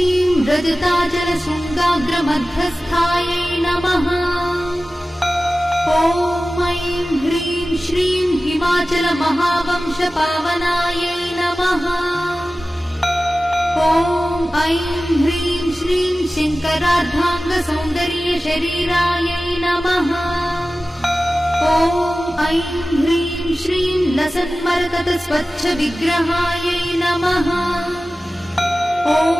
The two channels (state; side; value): normal; both; correlation 0.96